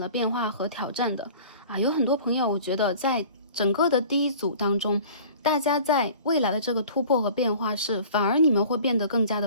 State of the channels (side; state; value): both; inverted; correlation -0.45